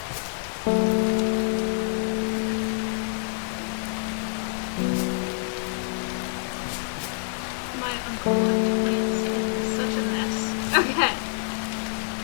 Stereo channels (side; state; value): right; silent; digital silence